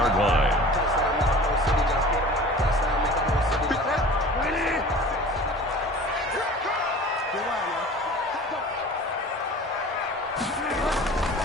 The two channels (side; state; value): both; normal; correlation 0.41